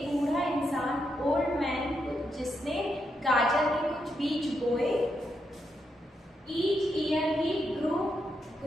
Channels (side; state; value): both; normal; correlation 0.82